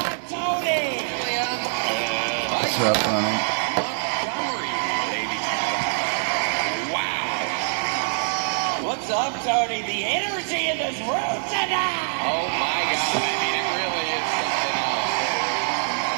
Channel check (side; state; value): left; silent; digital silence